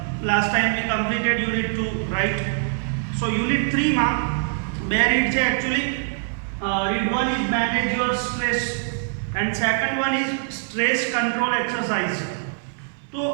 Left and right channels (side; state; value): left; silent; digital silence